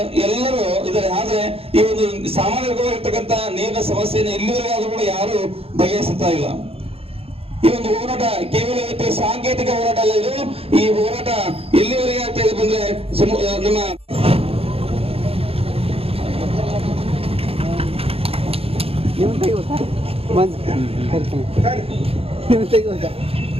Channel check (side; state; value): left; late; 0.28 ms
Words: ಎಲ್ಲರೂ ಇದ್ದಾರೆ. ಆದ್ರೆ ಈ ಒಂದು ಸಾಮಾನ್ಯವಾಗಿರ್ತಕ್ಕಂಥ ನೀರಿನ ಸಮಸ್ಯೆಯನ್ನು ಇಲ್ಲಿವರೆಗೆ ಆದ್ರೂ ಕೂಡ ಯಾರು ಬಗೆಹರಿಸುತ್ತಾ ಇಲ್ಲ. ಈ ಒಂದು ಹೋರಾಟ ಕೇವಲ ಇವತ್ತು ಸಾಂಕೇತಿಕ ಹೋರಾಟ ಅಲ್ಲ, ಇದು ಈ ಹೋರಾಟ ಎಲ್ಲಿವರೆಗೆ ಆಗ್ತಾ ಇದೆ ಬಂದ್ರೆ ನಮ್ಮ